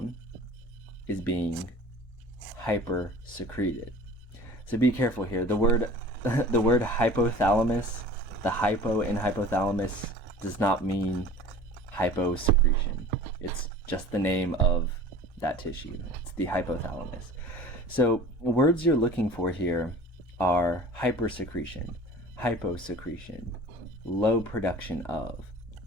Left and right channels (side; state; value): both; normal; correlation 0.43